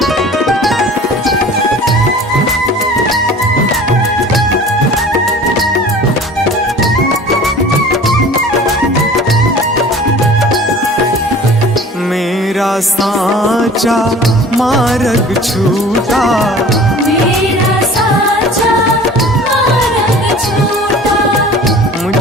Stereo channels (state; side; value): normal; both; correlation 0.44